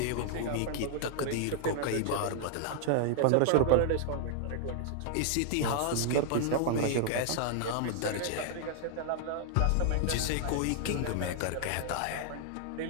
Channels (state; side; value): different; both; correlation 0.00